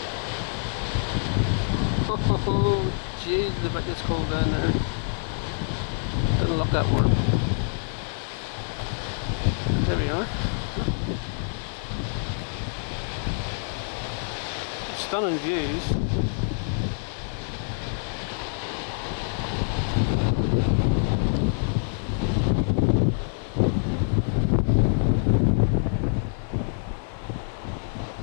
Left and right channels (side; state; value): right; silent; 61 dB below the other